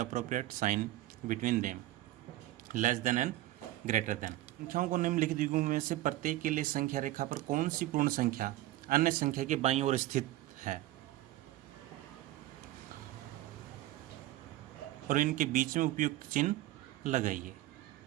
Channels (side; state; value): left; quieter; 15.8 dB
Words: appropriate sign between them. Less than and greater than. संख्याओं को निम्नलिखित युग्मों में से प्रत्येक के लिए संख्या रेखा पर कौन सी पूर्ण संख्या अन्य संख्या के बाईं ओर स्थित है और इनके बीच में उपयुक्त चिन्ह लगाइए।